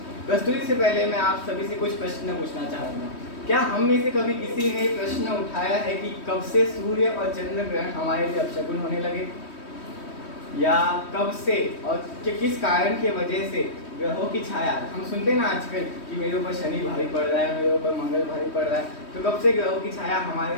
प्रस्तुति से पहले मैं आप सभी से कुछ प्रश्न पूछना चाहूँगा। क्या हम में से कभी किसी ने प्रश्न उठाया है कि कब से सूर्य और चंद्र ग्रहण हमारे लिए अपशकुन होने लगे, या कब से और किस कारण की वजह से ग्रहों की छाया, हम सुनते हैं ना आजकल कि मेरे ऊपर शनि भारी पड़ रहा है, मेरे ऊपर मंगल भारी पड़ रहा है, तो कब से ग्रहों की छाया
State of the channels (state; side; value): late; right; 3.2 ms